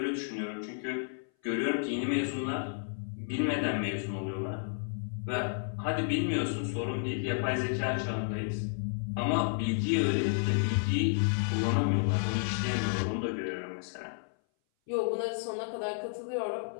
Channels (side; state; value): right; silent; 57 dB below the other